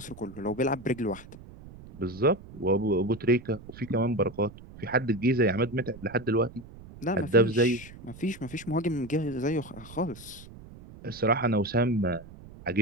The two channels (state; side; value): noise; right; rumble, 18 dB below the sound